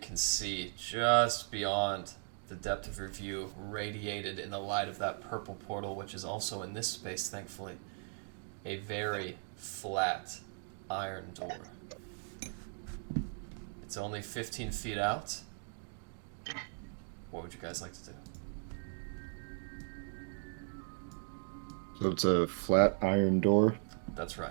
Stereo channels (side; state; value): left; silent; 53 dB below the other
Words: see just beyond the depth of your view, radiated in the light of that purple portal, which is also in this space, thankfully, a very flat iron door. It's only 15 feet out. What would you guys like to do? So it's a flat iron door. That's